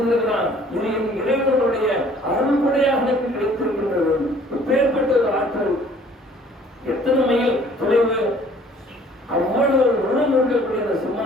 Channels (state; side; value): normal; both; correlation 0.55